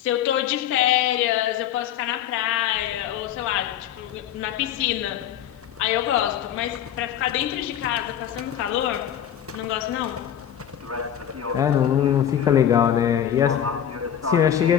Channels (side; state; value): right; quieter; 10.0 dB